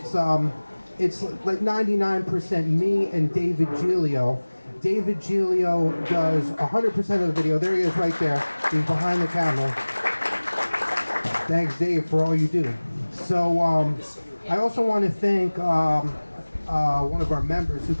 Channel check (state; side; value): inverted; both; correlation -1.00